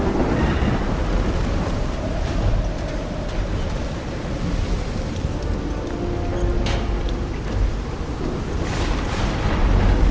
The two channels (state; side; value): identical; both; correlation 1.00